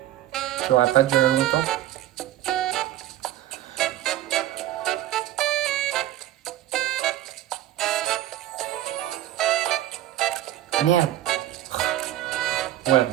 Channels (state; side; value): quieter; left; 13.7 dB